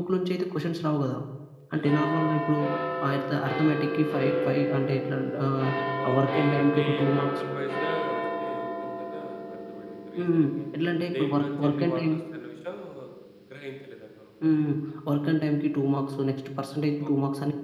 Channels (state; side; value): identical; both; correlation 1.00